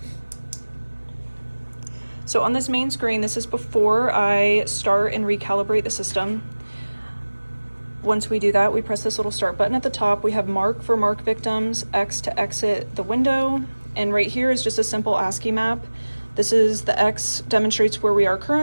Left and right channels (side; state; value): both; inverted; correlation -1.00